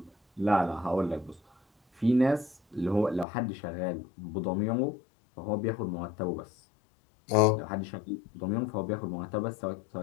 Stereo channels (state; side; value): drops out; right; at 3.2 s